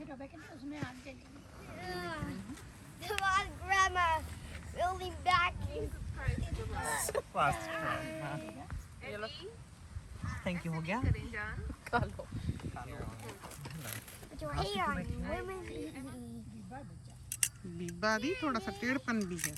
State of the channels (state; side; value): identical; both; correlation 1.00